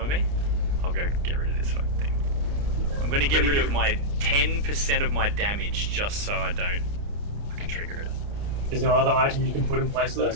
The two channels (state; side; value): late; left; 29 ms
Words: me? I'll go get rid of this fucking thing. I'm gonna get rid of my 10% of my damage just so I don't fucking trigger it. Is there other item you can put in place though?